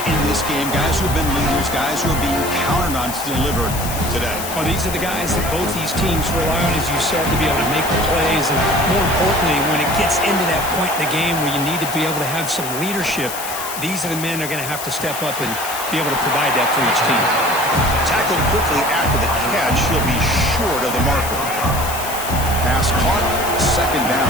in this game. Guys who have been leaders, guys who are being counted on to deliver today. Well, these are the guys that both these teams rely on, as you said, to be able to make the plays. And more importantly, when it gets into that point in the game where you need to be able to have some leadership, these are the men that are going to have to step up and be able to provide that for each team. Tackled quickly after the catch. He'll be short of the marker. Pass caught. Second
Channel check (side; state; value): left; noise; hiss, 8 dB below the sound